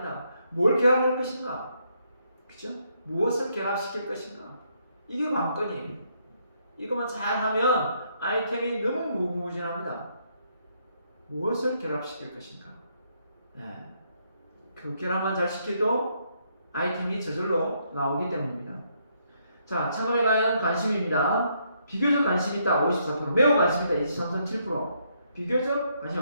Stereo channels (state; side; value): inverted; both; correlation -0.74